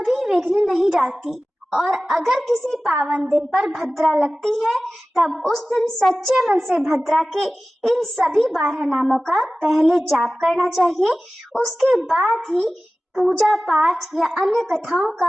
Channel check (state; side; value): normal; both; correlation 0.97